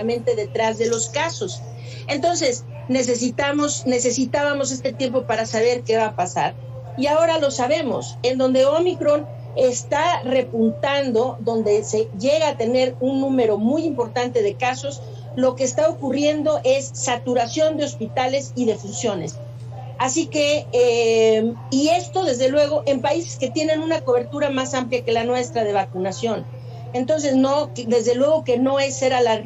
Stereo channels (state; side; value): identical; both; correlation 1.00